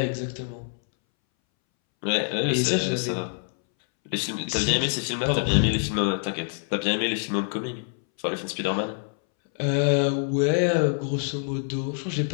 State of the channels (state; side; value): silent; right; 61 dB below the other